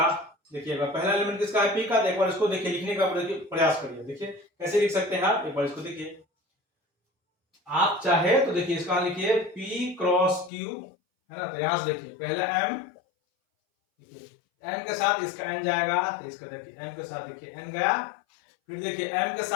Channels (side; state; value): right; drops out; at 10.5 s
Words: देखिएगा पहला एलिमेंट किसका है, p का। तो एक बार इसको देखिए लिखने का प्रयास करिए, देखिए कैसे लिख सकते हैं आप, एक बार इसको देखिए। आप चाहे तो देखिए इसका लिखिए p क्रॉस q है ना, तो यहां से देखिए पहला m, देखिए m के साथ इसका n जाएगा, तो इसका देखिए m के साथ देखिए n गया, फिर देखिए m के